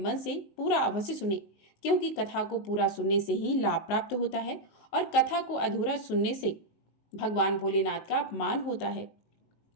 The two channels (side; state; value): right; late; 19 ms